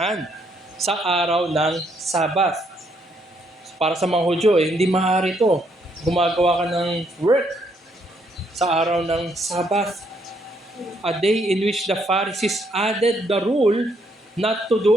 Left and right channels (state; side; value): normal; both; correlation 0.72